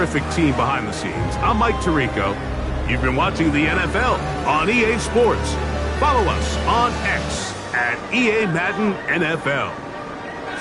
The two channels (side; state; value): both; identical; correlation 1.00